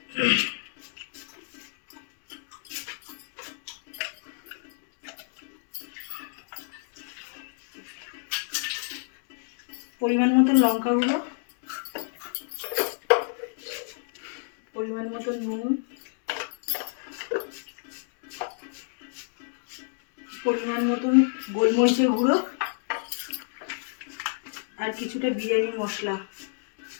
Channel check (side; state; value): right; silent; digital silence